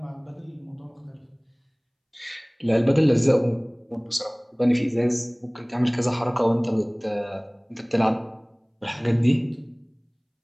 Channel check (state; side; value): identical; both; correlation 1.00